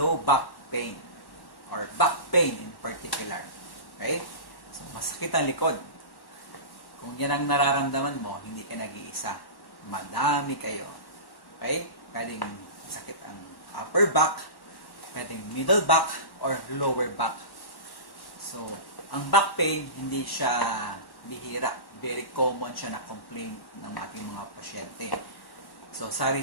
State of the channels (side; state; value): right; late; 1.1 ms